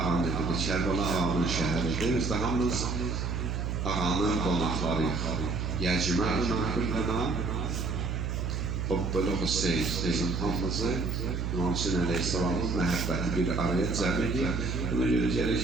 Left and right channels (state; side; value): noise; right; hum, 1 dB below the sound